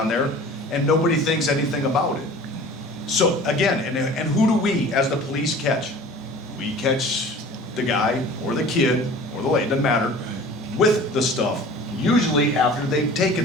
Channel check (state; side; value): normal; both; correlation 0.43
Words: there, and nobody thinks anything about it. So again, and who do we as the police catch? We catch the guy or the kid or the lady, doesn't matter, with the stuff, usually after they've